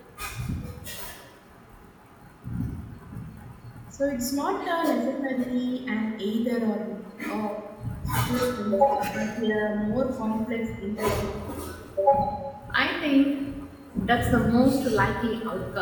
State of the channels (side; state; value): both; identical; correlation 1.00